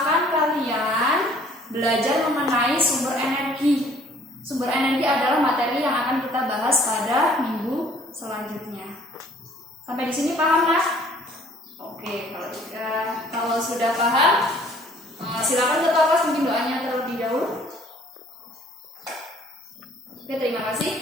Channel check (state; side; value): normal; both; correlation 0.57